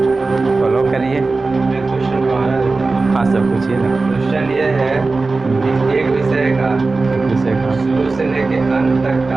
फॉलो करिए। क्वेश्चन हाँ सब पूछिए ना। क्वेश्चन ये है कि एक विषय का शुरू से लेके अंत तक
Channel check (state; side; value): quieter; left; 3.7 dB